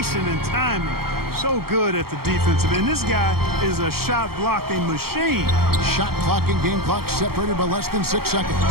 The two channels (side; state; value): left; late; 0.94 ms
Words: and timing, so good at the defensive end. This guy is a shot-blocking machine. Shot clock and game clock separated by less than 6